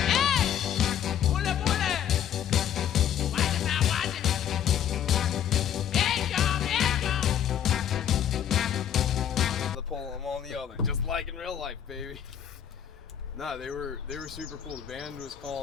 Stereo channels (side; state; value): right; quieter; 9.6 dB